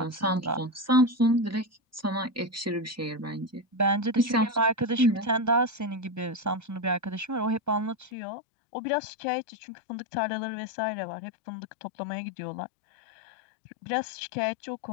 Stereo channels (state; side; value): drops out; right; at 8.1 s